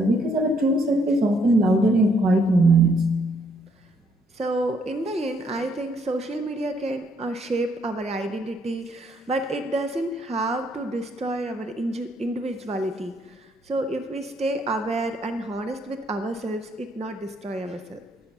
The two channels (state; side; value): normal; both; correlation 0.70